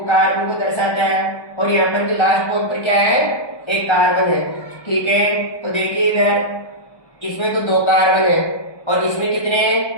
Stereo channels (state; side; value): late; right; 1.2 ms